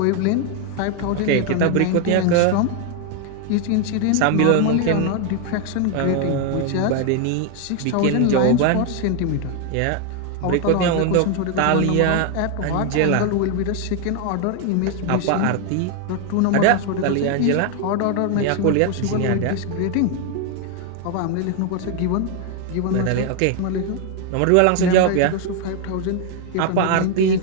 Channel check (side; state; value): both; different; correlation 0.01